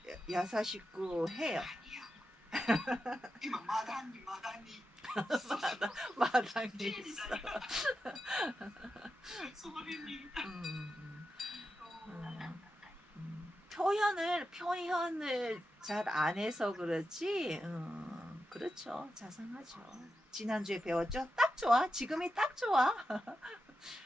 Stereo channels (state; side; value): normal; both; correlation 0.89